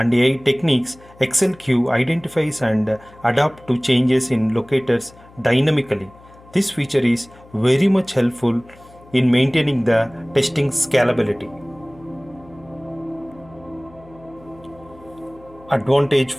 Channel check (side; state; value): left; noise; hum, 24 dB below the sound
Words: AI techniques, AccelQ identifies and adapts to changes in locators dynamically. This feature is very much helpful in maintaining the testing scalability. Advantage